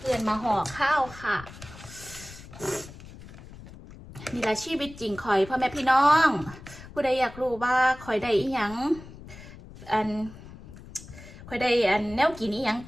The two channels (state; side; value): noise; left; rumble, 17 dB below the sound